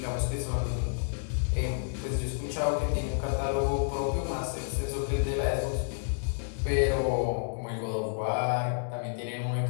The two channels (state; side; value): silent; right; digital silence